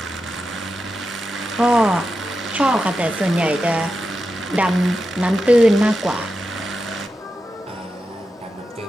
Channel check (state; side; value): normal; both; correlation 0.89